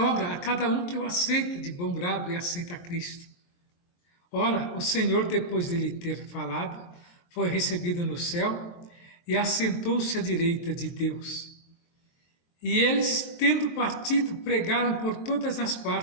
a cada um que o aceita de bom grado e aceita Cristo. Ora, o Senhor, depois de lhe ter falado, foi recebido no céu e assentou-se à direita de Deus. E eles, tendo partido, pregaram por todas as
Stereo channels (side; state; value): right; late; 23 ms